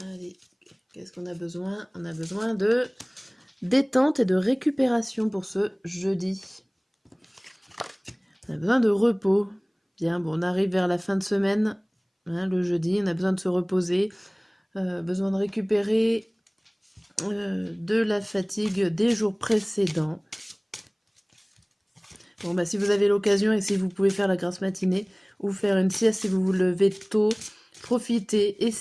qu'est-ce qu'on a besoin? On a besoin de détente et de récupération pour ce jeudi. On a besoin de repos. Bien, bon, on arrive vers la fin de semaine, hein, le jeudi, on a besoin de se reposer, besoin de récupérer de la fatigue des jours précédents. Bon, bah, si vous avez l'occasion et si vous pouvez faire la grasse matinée ou faire une sieste si vous vous levez tôt, profitez,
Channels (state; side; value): identical; both; correlation 1.00